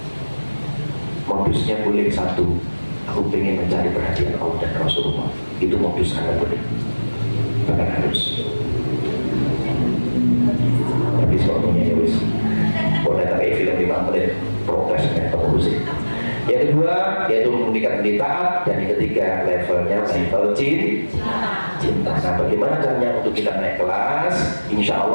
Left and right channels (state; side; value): inverted; both; correlation -1.00